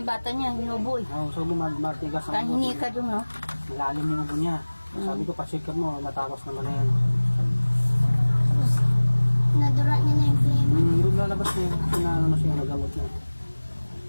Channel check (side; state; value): both; inverted; correlation -1.00